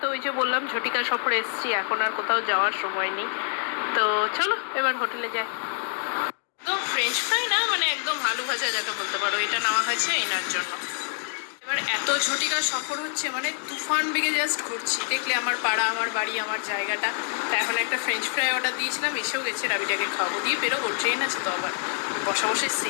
তো ওই যে বললাম ঝটিকা সফরে এসেছি, এখন আর কোথাও যাওয়ার সময় নেই। তো চলো এবার হোটেলে যাই। একদম ফ্রেঞ্চ ফ্রাই না, মানে একদম আলু ভাজা যাকে বলতে পারো, এটা নেওয়া হয়েছে এনার জন্য। এবার এত ঝটিকা সফর হচ্ছে, মানে তুফান বেগে জাস্ট ঘুরছি। দেখলে আমার পাড়া, আমার বাড়ি, আমার জায়গাটা। তা এখন একটা ফ্রেঞ্চ ফ্রাই অর্ডার দিয়েছিলাম, এসেও গেছে। রাবিটাকে খাওয়াবো, দিয়ে বেরোবো, ট্রেন আছে তো আবার। বসা বসে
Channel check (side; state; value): right; silent; 61 dB below the other